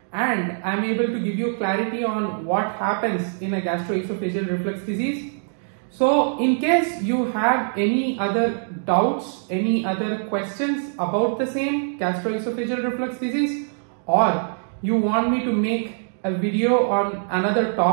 and I am able to give you clarity on what happens in a gastro-esophageal reflux disease. So in case you have any other doubts, any other questions about the same gastro-esophageal reflux disease, or you want me to make a video on another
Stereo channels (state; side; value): silent; left; digital silence